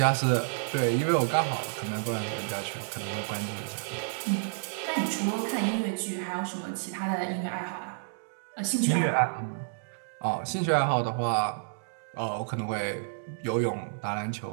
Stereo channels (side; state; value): left; silent; digital silence